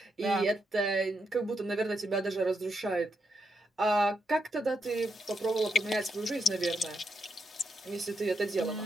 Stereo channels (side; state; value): both; normal; correlation 0.81